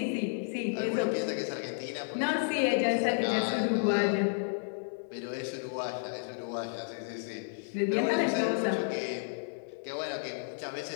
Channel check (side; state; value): right; silent; digital silence